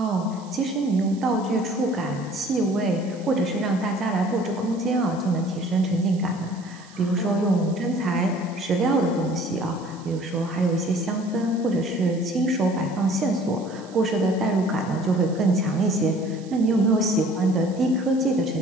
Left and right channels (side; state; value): right; noise; hiss, 24 dB below the sound